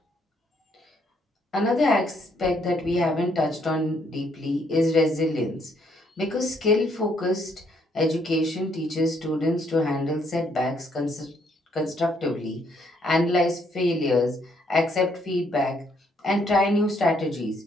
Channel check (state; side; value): normal; both; correlation 0.70